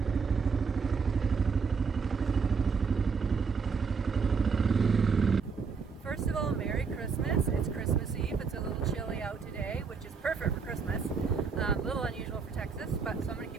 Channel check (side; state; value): left; quieter; 5.4 dB